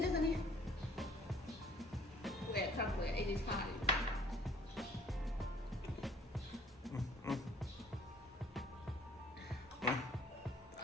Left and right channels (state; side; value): normal; both; correlation 0.54